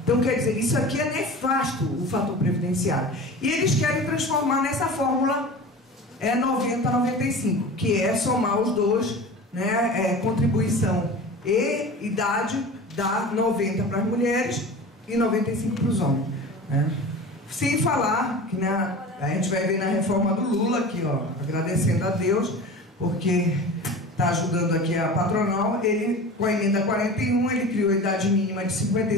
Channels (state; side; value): normal; both; correlation 0.35